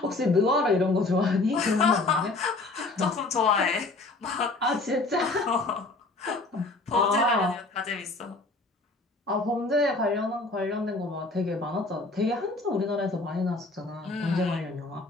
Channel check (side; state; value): right; quieter; 3.2 dB